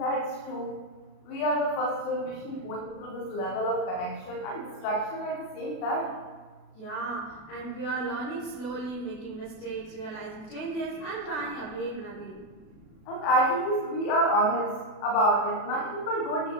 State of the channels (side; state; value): right; late; 37 ms